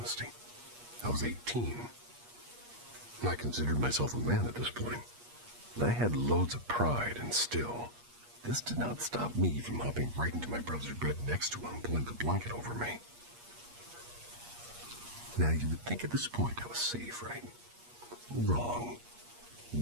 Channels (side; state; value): left; late; 8.4 ms